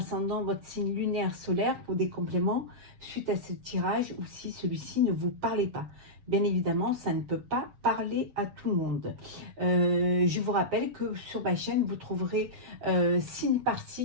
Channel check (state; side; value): late; left; 7.2 ms